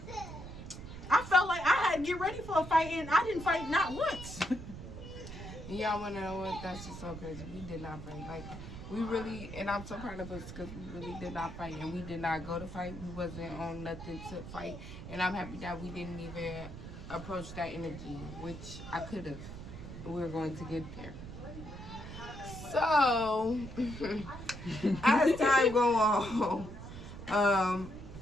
I felt like I had to get ready for a fight, and I didn't fight not once. Y'all want to know what? That's just so crazy. We did not fight. Like, we really, and I'm so proud of us because we really did not fight, and we did not go to fight. We wasn't on nothing to fight, and I'm happy that we didn't even approach that energy, which I could have. We were going to get there. So, as time go on,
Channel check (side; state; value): right; noise; rumble, 11 dB below the sound